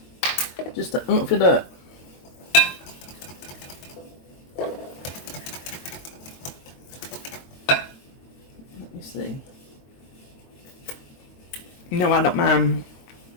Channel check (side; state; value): right; late; 22 ms